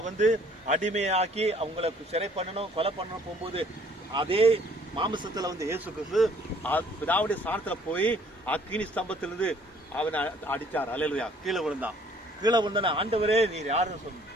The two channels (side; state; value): both; normal; correlation 0.58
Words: வந்து அடிமையாக்கி அவங்களுக்கு சிறை பண்ணணும், கொலை பண்ணணும் போகும்போது, அதே மாமிசத்துல வந்து இயேசு கிறிஸ்து பிதாவுடைய ஸ்தானத்துல போய் அக்கினி ஸ்தம்பத்திலிருந்து அவனை அடிச்சார். அல்லேலூயா. கீழே விழுந்தான ஆண்டவரே நீர் யாருன்னு சொன்ன,